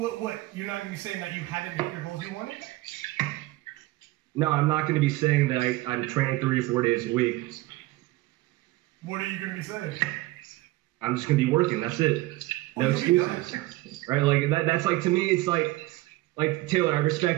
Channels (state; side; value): quieter; left; 18.9 dB